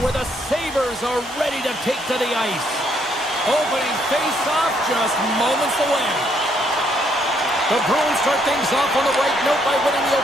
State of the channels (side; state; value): both; normal; correlation 0.71